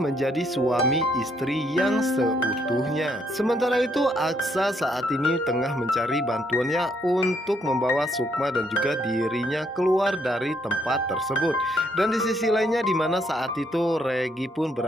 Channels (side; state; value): both; normal; correlation 0.71